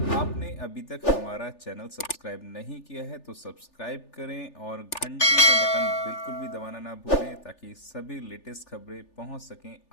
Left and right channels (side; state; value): right; late; 3.4 ms